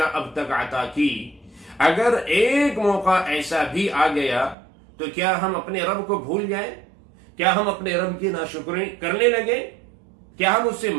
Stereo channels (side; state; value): left; drops out; at 4.5 s